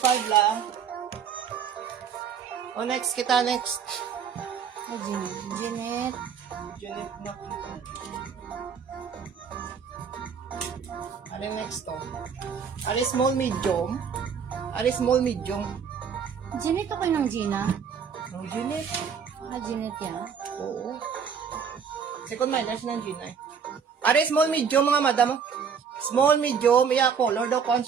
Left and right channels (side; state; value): left; quieter; 6.8 dB